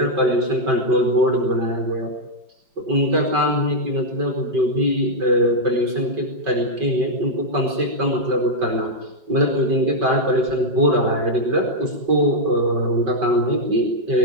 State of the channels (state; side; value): late; left; 5.2 ms